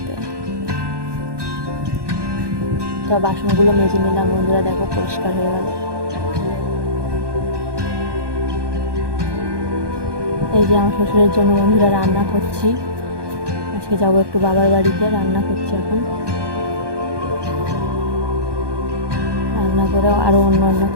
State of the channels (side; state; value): left; late; 1.2 ms